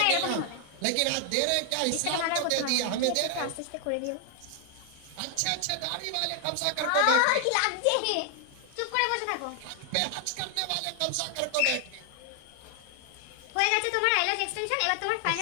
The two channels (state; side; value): different; both; correlation 0.00